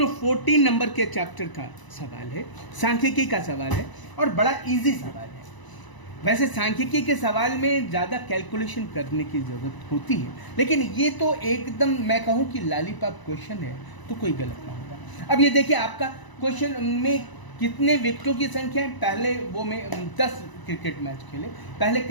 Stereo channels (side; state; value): right; late; 1.0 ms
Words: 14 नंबर के चैप्टर का सवाल है, सांख्यिकी का सवाल है, और बड़ा इजी सवाल है। वैसे सांख्यिकी के सवाल में ज़्यादा कैलकुलेशन करने की ज़रूरत होती है, लेकिन ये तो एकदम मैं कहूँ कि लॉलीपॉप क्वेश्चन है, तो कोई गलत ना होगा। अब ये देखिए आपका क्वेश्चन में कितने विकेटों की संख्या है। पहले वो में 10 क्रिकेट मैच खेले, पहले